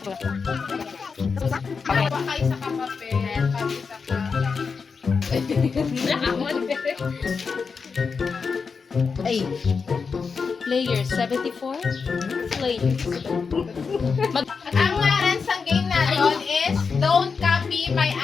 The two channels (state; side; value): quieter; right; 5.3 dB